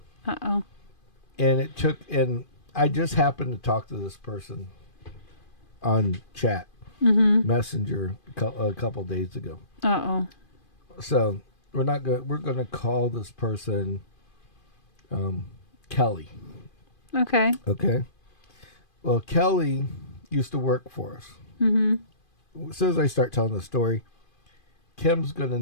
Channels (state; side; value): late; right; 2.5 ms